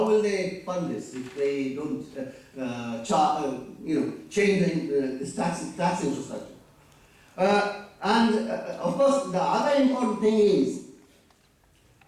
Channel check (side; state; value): both; identical; correlation 1.00